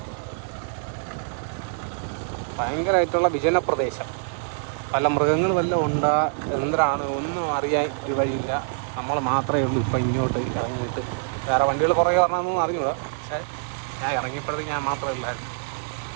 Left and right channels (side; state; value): left; silent; 62 dB below the other